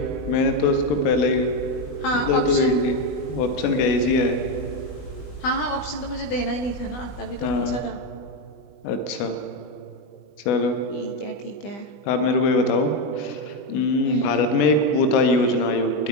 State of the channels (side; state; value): right; late; 20 ms